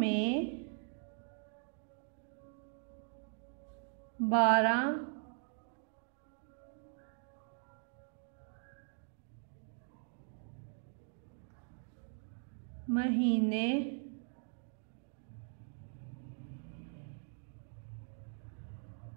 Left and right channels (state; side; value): silent; left; 51 dB below the other